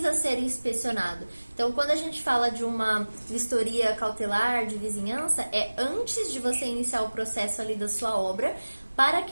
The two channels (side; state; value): both; inverted; correlation -1.00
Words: ser inspecionado. Então, quando a gente fala de uma vistoria cautelar de vizinhança, é antes de você iniciar o processo ali da sua obra, para